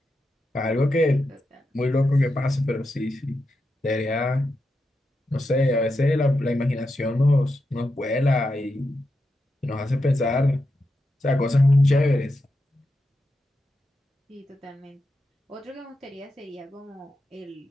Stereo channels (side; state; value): both; normal; correlation 0.87